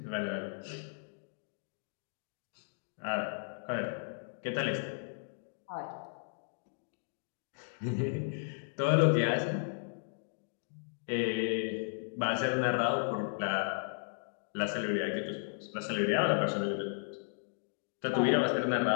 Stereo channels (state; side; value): silent; right; digital silence